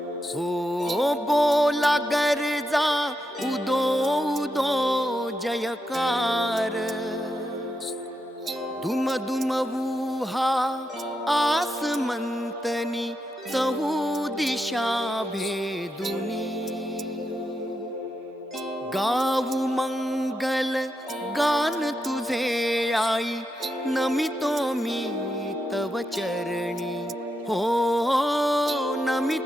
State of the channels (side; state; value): both; normal; correlation 0.85